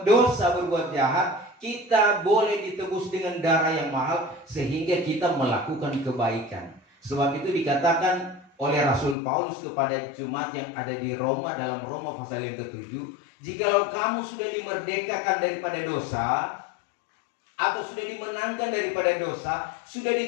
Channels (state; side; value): drops out; right; at 9.2 s